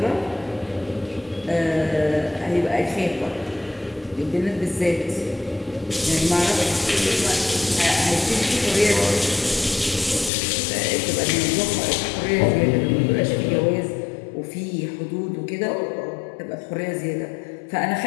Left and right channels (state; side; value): drops out; right; at 10.3 s